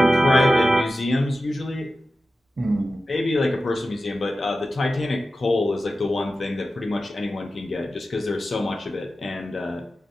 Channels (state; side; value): normal; both; correlation 0.93